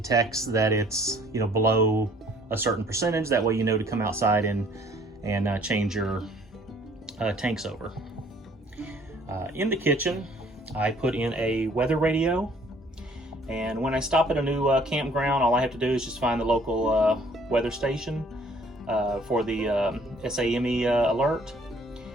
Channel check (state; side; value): normal; both; correlation 0.58